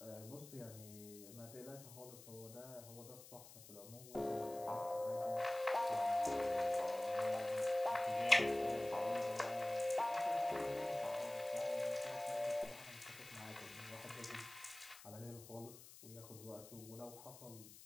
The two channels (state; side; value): noise; left; hiss, 17 dB below the sound